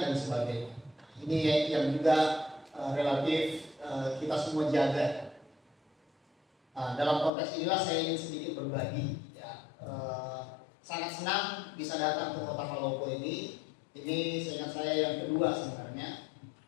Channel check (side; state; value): right; drops out; at 7.3 s